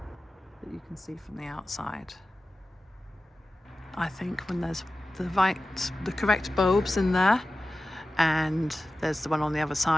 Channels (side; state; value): both; normal; correlation 0.95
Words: that you can see from the outside. I think when there's the correct bulbs in there, and there's the one on the other